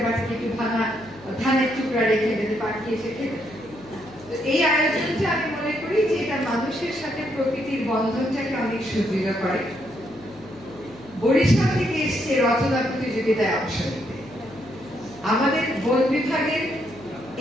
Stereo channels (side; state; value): left; noise; hum, 22 dB below the sound